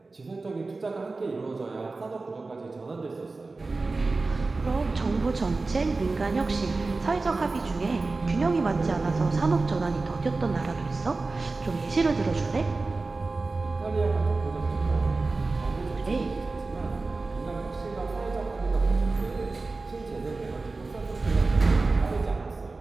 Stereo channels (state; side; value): quieter; left; 3.6 dB